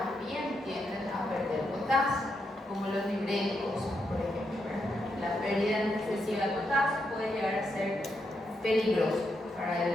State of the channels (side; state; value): both; normal; correlation 0.82